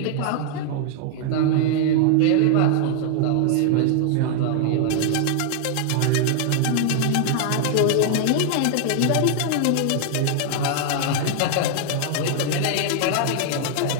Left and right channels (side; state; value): both; different; correlation 0.00